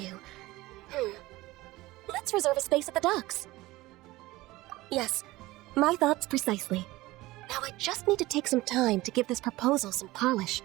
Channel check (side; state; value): left; quieter; 18.9 dB